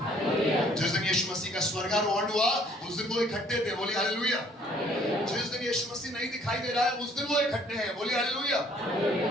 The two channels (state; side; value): normal; both; correlation 0.60